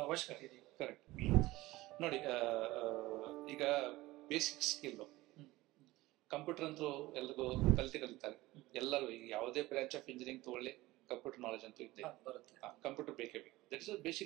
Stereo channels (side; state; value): left; quieter; 18.8 dB